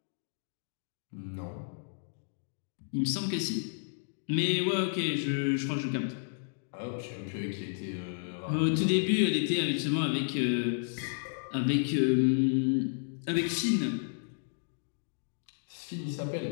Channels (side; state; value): right; silent; digital silence